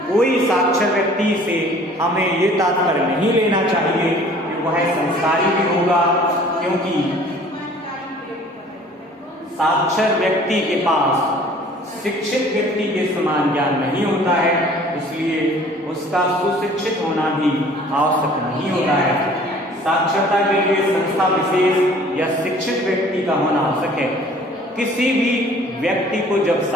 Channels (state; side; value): normal; both; correlation 0.51